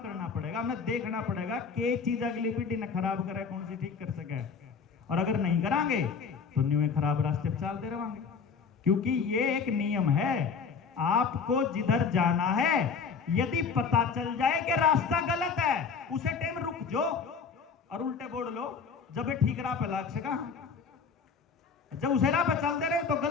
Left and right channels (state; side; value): quieter; right; 5.7 dB